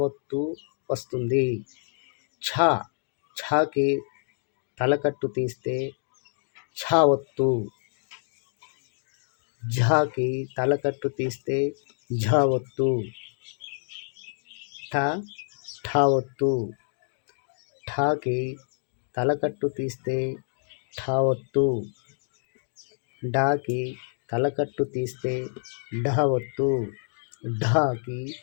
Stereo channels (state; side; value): silent; right; digital silence